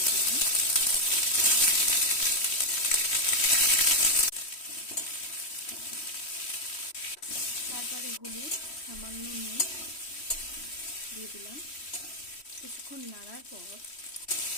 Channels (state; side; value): late; right; 3.1 ms